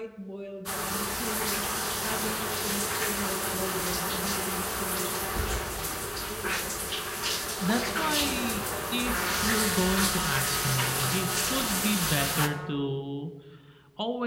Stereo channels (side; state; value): both; identical; correlation 1.00